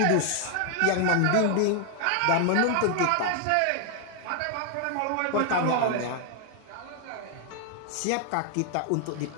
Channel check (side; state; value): both; different; correlation 0.00